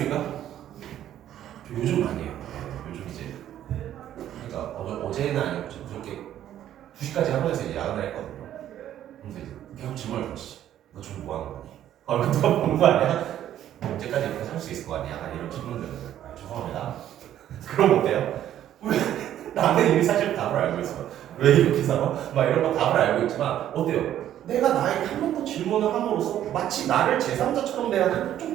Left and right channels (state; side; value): quieter; left; 11.5 dB